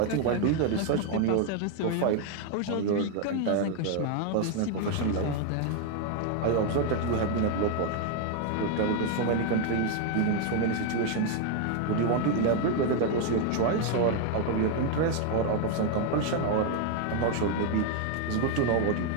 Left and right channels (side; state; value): both; different; correlation 0.00